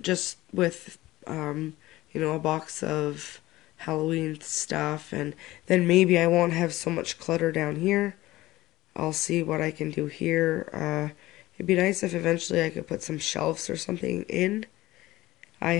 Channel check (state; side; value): quieter; right; 17.6 dB